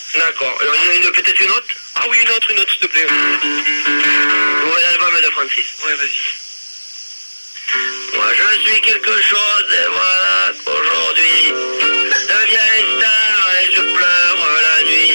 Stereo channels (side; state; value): both; inverted; correlation -1.00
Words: D'accord. Alors, il y en a peut-être une autre? Ah oui, une autre, s'il te plaît. Nouvel album de Francis. Ouais, vas-y. Moi je suis quelque chose et voilà qu'aujourd'hui deviens une star et je pleure la nuit,